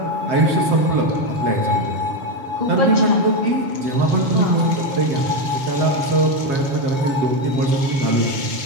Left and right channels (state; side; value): late; left; 7.3 ms